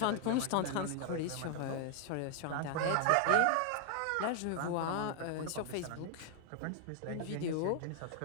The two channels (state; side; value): different; both; correlation 0.00